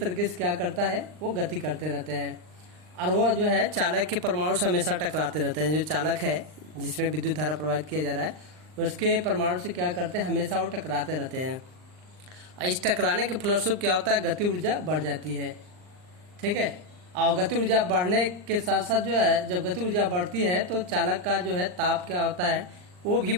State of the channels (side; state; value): left; late; 39 ms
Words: से क्या करता है, वो गति करते रहते हैं। और वो जो है चालक के परमाणु से हमेशा टकराते रहते हैं। जो चालक है जिसमें विद्युत धारा प्रवाहित किया जा रहा है उसके परमाणु से क्या करते हैं, हमेशा वो टकराते रहते हैं। और इस टकराने के फलस्वरूप क्या होता है, गति ऊर्जा बढ़ जाती है। ठीक है, और गति ऊर्जा बढ़ने के साथ साथ जो है, जब गति ऊर्जा बढ़ती है तो चालक का जो है ताप क्या होता है, वो भी